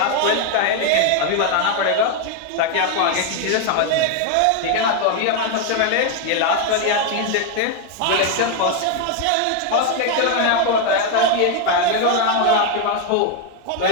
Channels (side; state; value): both; different; correlation 0.01